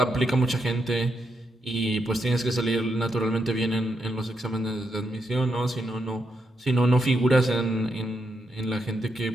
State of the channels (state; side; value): normal; both; correlation 0.82